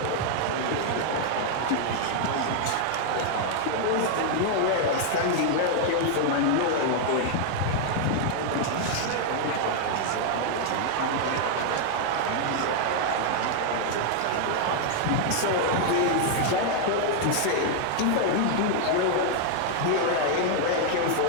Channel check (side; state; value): both; different; correlation 0.00